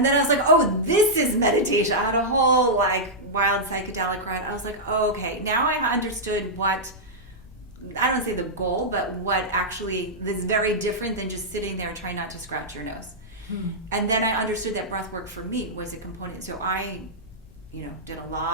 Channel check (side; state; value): left; noise; hum, 26 dB below the sound